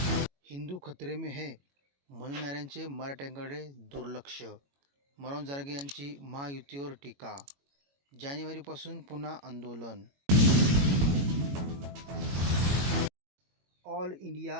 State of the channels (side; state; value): left; late; 21 ms